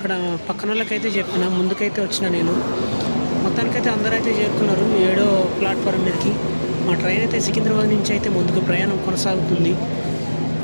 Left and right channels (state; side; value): inverted; both; correlation -1.00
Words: పక్కన వాళ్ళకైతే చెప్పిన, ముందుకైతే వచ్చిన నేను. మొత్తానికైతే అందరూ అయితే చేరుకున్నారు 7వ ప్లాట్ఫారం మీదకి. మా ట్రైన్ అయితే సికింద్రాబాద్ నుంచి అయితే ముందుకు ప్రయాణం కొనసాగుతుంది.